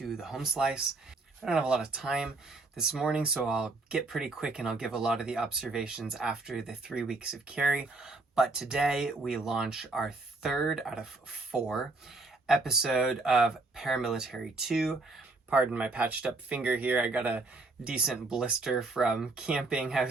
the Home Slice. I don't have a lot of time this morning, so I'll get pretty quick and I'll give a lot of the observations after the 3 weeks of carry. But today we launch our third out of 4 episode of ParaMilitary 2. Pardon my patched up finger here. I got a decent blister from camping. I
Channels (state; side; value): quieter; left; 3.3 dB